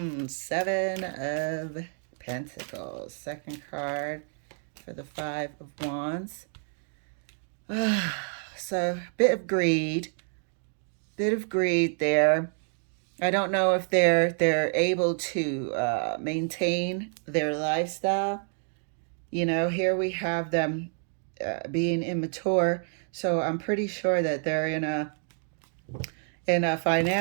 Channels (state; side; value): silent; left; 55 dB below the other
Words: of Pentacles. Second card for the 5 of Wands. So, bit of greed there. I don't know if they're able to maintain their lifestyle. Here we have them being immature, so I'm pretty sure that they're in a